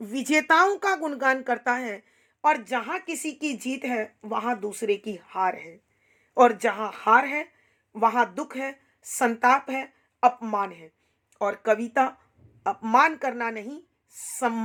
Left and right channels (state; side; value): identical; both; correlation 1.00